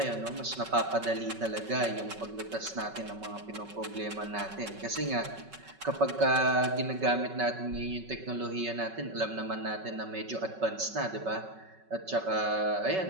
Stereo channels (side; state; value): left; late; 5.3 ms